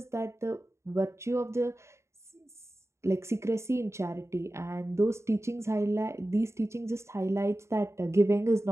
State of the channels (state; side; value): late; left; 0.13 ms